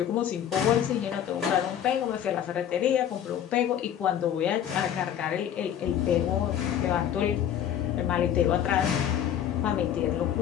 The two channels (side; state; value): right; quieter; 10.0 dB